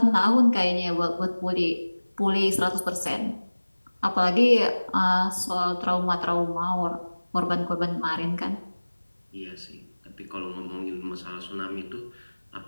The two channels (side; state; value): both; inverted; correlation -1.00